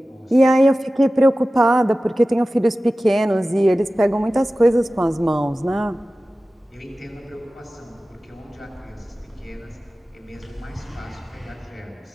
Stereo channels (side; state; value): both; normal; correlation 0.96